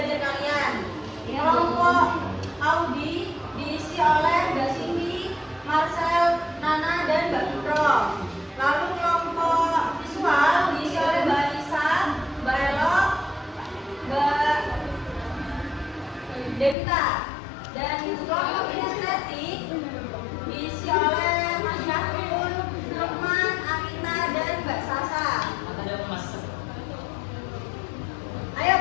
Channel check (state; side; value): drops out; right; at 16.8 s